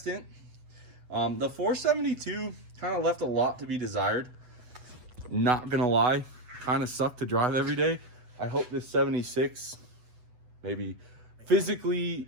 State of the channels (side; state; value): left; late; 8.0 ms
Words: The 472 kind of left a lot to be desired. Not gonna lie. Kind of suck to drive every day. I hope this 76 maybe physically